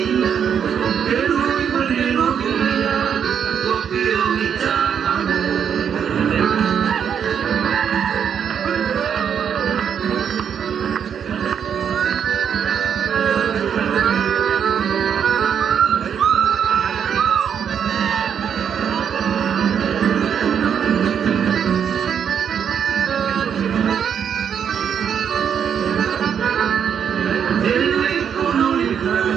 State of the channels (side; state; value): left; quieter; 8.0 dB